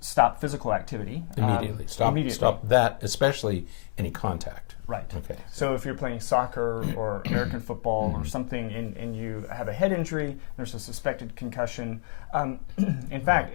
stop physical activity. Immediately. Stop that, especially any contact. Right. Okay. So if you're playing soccer or American football or something and you have a head injury, there's a suspected concussion. In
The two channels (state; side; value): silent; right; digital silence